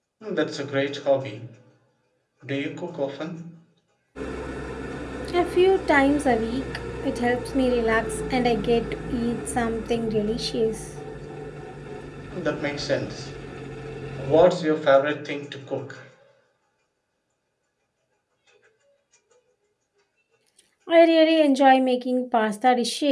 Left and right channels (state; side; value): identical; both; correlation 1.00